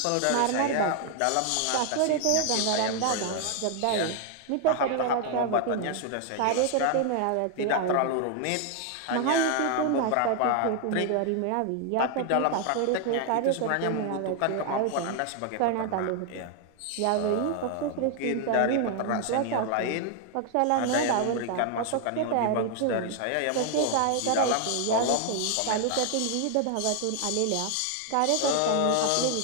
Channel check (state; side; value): different; both; correlation 0.00